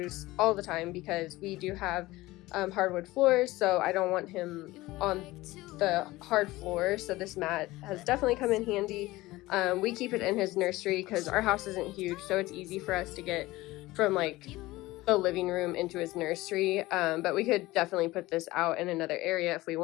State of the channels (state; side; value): quieter; right; 18.9 dB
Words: all the time because we do have hardwood floors, so I don't want him on the hard floor. So this mat has definitely come in handy. We keep it in his nursery because our house isn't huge, so it's easy for us to get from like the living room into his nursery, but we could definitely put this out in another area if we